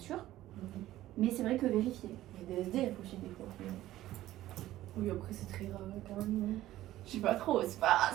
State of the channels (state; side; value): quieter; left; 14.8 dB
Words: Mais c'est vrai que vérifier. Il y a des SDF aussi des fois. Oui, après c'est très rare quand même. Je sais pas trop, c'est pas